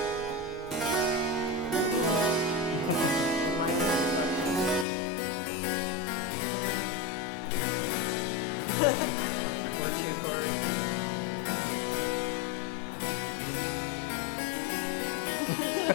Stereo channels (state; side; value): drops out; right; at 4.9 s